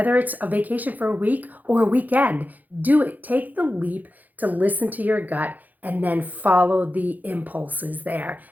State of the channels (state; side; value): late; left; 0.082 ms